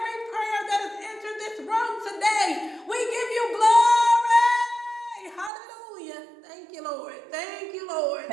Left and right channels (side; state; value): left; drops out; at 5.5 s